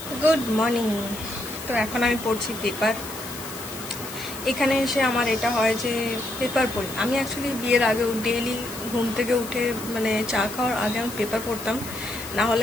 Good morning. তো এখন আমি পড়ছি পেপার। এখানে এসে আমার এটা হয় যে পেপার পড়ি। আমি অ্যাকচুয়ালি বিয়ের আগেও ডেইলি ঘুম থেকে উঠে মানে চা খাওয়ার আগে আমি পেপার পড়তাম, না হলে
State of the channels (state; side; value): noise; left; hiss, 12 dB below the sound